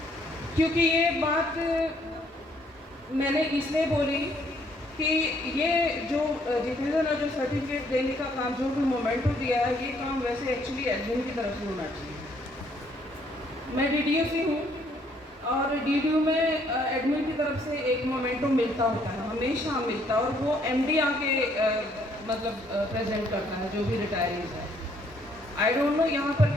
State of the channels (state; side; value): normal; both; correlation 0.66